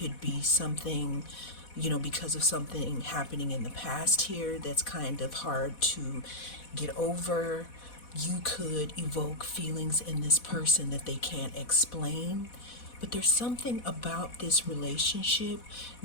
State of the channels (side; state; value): right; late; 4.1 ms